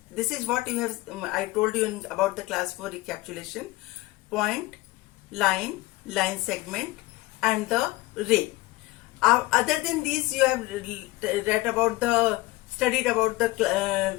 This is what you have, I told you about the class 4 recapitulation. Point, line segment and the ray. Other than these, you have studied about the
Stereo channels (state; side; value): quieter; right; 19.9 dB